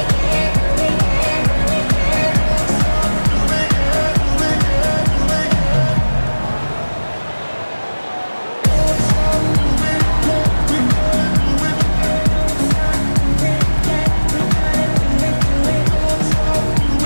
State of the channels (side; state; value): both; inverted; correlation -1.00